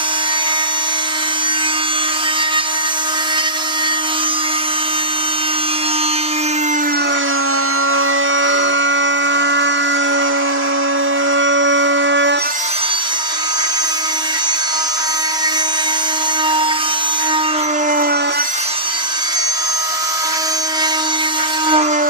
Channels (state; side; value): late; right; 3.0 ms